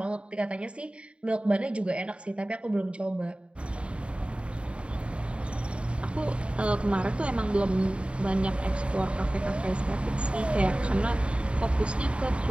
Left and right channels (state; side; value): late; left; 0.058 ms